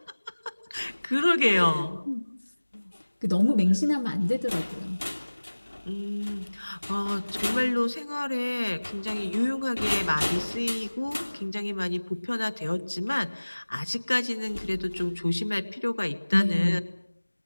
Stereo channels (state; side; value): inverted; both; correlation -1.00